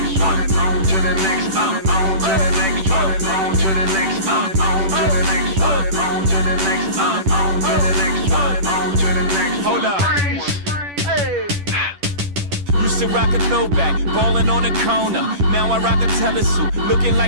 one, on to the next one, on to the next one, on to the next one, on to the next one, on to the next one, on to the next one, on to the next one. Hold up. Used to rock a throwback, ballin' on a corner. Now I rock a telesuit, looking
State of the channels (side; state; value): left; late; 10 ms